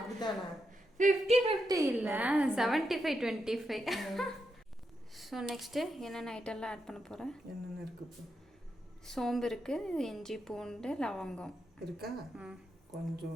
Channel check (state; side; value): normal; both; correlation 0.84